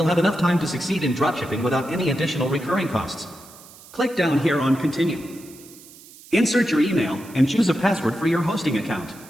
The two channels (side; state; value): right; noise; hiss, 21 dB below the sound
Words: have enough time to succeed in dropshipping without any additional recurring costs. Click down here on Continue. Insert your email and choose a password for your hosting account.